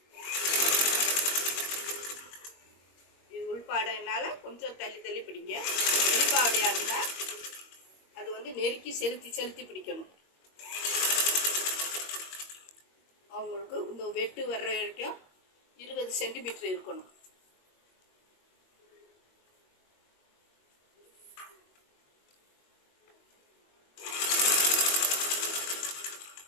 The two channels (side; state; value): right; late; 21 ms